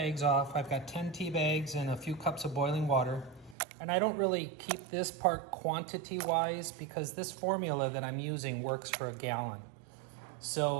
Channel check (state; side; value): drops out; left; at 3.6 s